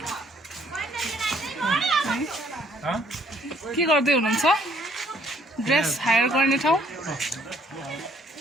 के गर्दै हुनुहुन्छ ड्रेस हायर गर्ने ठाउँ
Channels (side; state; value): both; normal; correlation 0.65